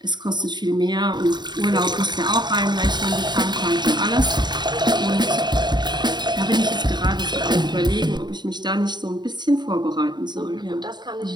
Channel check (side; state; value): left; late; 0.21 ms